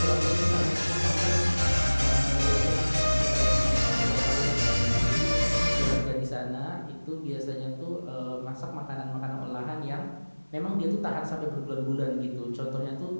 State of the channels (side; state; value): both; inverted; correlation -1.00